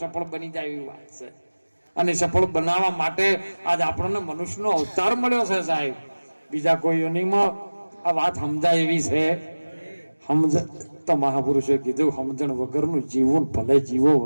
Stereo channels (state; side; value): inverted; both; correlation -1.00